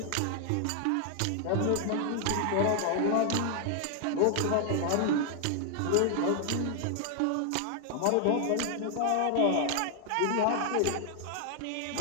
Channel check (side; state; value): both; different; correlation 0.00